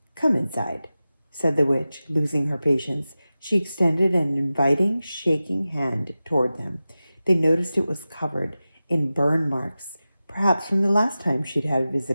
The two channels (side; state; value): both; inverted; correlation -0.95